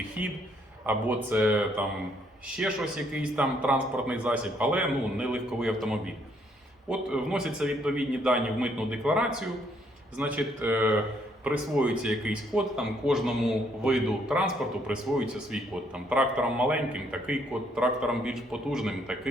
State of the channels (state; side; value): normal; both; correlation 0.69